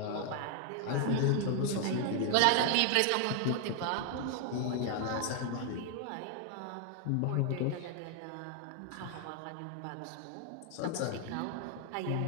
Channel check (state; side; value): different; both; correlation 0.00